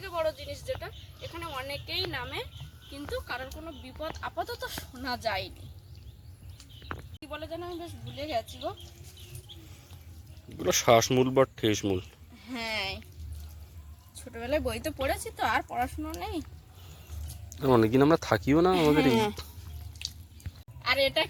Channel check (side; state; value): both; identical; correlation 1.00